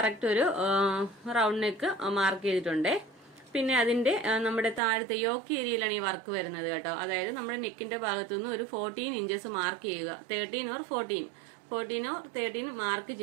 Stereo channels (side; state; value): left; drops out; at 4.8 s